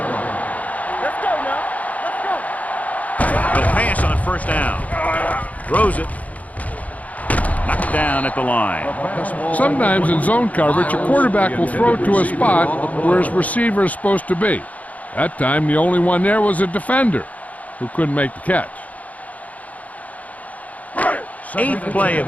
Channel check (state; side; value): late; right; 0.072 ms